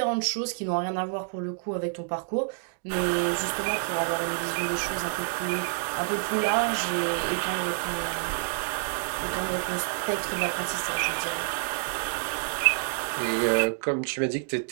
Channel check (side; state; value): left; silent; digital silence